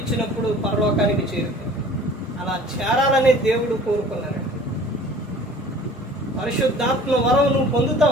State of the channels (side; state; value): both; normal; correlation 0.47